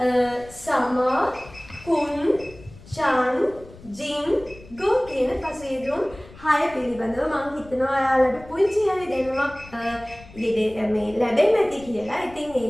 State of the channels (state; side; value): noise; left; rumble, 20 dB below the sound